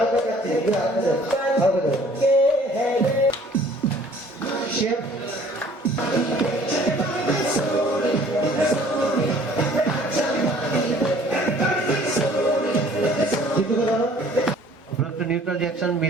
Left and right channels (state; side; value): normal; both; correlation 0.54